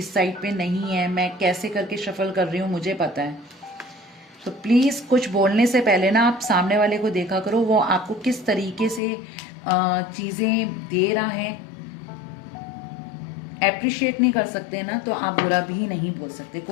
साइड पे नहीं है, मैं कैसे करके शफल कर रही हूँ मुझे पता है। तो प्लीज़ कुछ बोलने से पहले ना आप सामने वाले को देखा करो, वो आपको किस तरीके से चीज़ें दे रहा है। एप्रिशिएट नहीं कर सकते ना तो आप बुरा भी नहीं बोल सकते,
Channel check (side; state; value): right; drops out; at 9.0 s